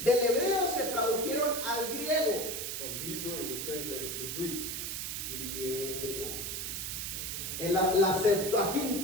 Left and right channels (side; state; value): right; noise; hiss, 4 dB below the sound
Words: hebreo se tradujeron al griego. From Hebrew, it was translated to Greek. Griego. En la